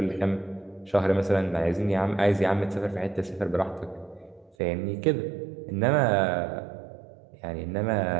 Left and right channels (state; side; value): drops out; left; at 4.5 s